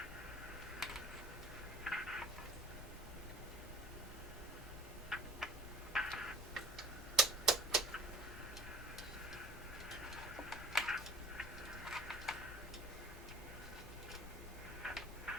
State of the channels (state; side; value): normal; both; correlation 0.44